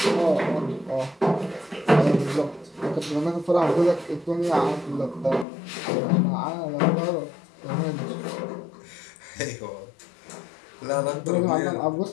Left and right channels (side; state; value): right; drops out; at 5.5 s